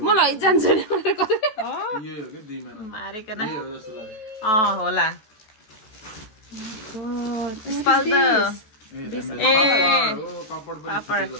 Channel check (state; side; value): late; right; 14 ms